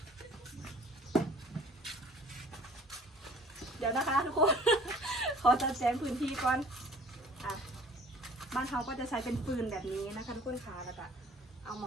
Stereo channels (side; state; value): both; normal; correlation 0.50